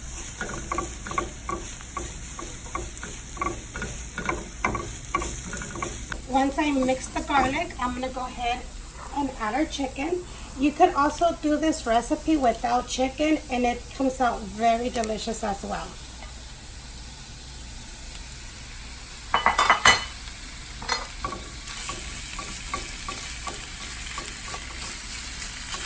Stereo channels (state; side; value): identical; both; correlation 1.00